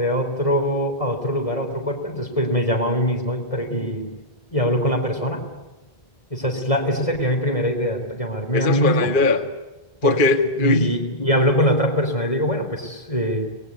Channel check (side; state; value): right; late; 1.7 ms